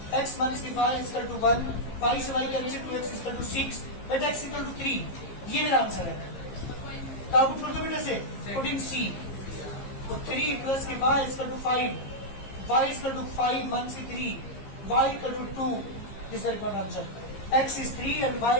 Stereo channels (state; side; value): late; right; 15 ms